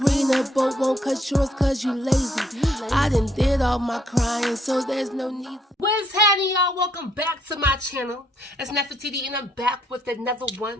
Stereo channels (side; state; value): both; normal; correlation 0.70